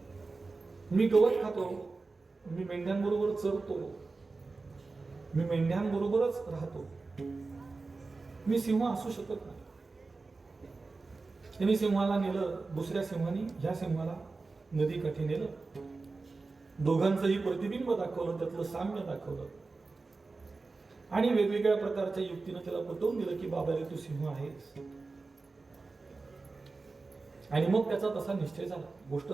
मी गवत खातो, मी मेंढ्यांबरोबर चरतो, मी मेंढ्यांबरोबरच राहतो, मी सिंह असू शकत नाही. त्यांनी सिंहाला नेलं, दुसऱ्या सिंहाने ह्या सिंहाला नदीकाठी नेलं. दोघांचंही प्रतिबिंब दाखवलं, त्यातलं साम्य दाखवलं आणि वेगवेगळ्या प्रकारच्या युक्तीनं त्याला पटवून दिलं की बाबा रे तू सिंह आहेस. आणि मग त्याचा तसा निश्चय झाला, गोष्ट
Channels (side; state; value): left; quieter; 3.8 dB